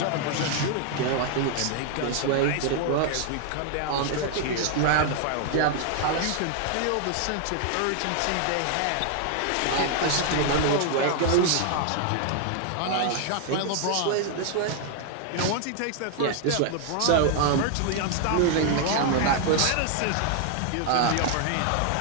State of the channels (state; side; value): different; both; correlation 0.00